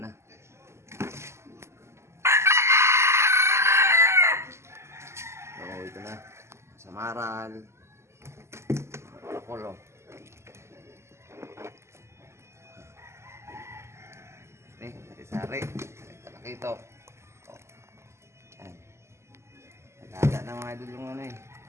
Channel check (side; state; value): left; late; 0.13 ms